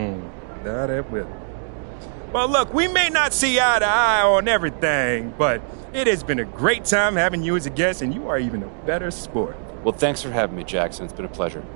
it will. Well, look, we may not see eye to eye on everything, but it has been a great time having you as a guest, and you are even a better sport. Well, thanks for having me, Jackson. It's been a pleasure.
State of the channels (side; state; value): left; silent; digital silence